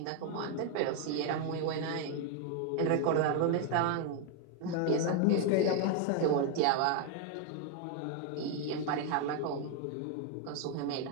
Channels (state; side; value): different; both; correlation 0.01